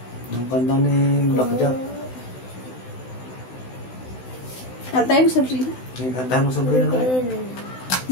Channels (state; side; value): late; right; 16 ms